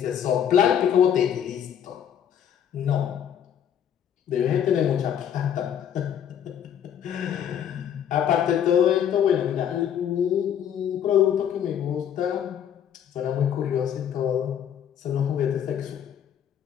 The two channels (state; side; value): quieter; right; 9.2 dB